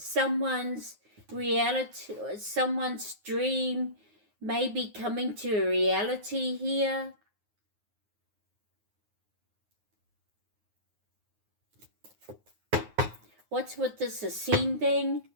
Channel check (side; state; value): left; late; 9.5 ms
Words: reality, someone's dream may be coming to a reality here. What's with this ascending?